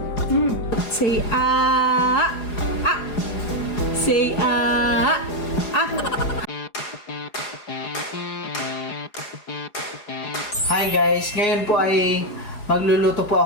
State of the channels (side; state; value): right; late; 4.8 ms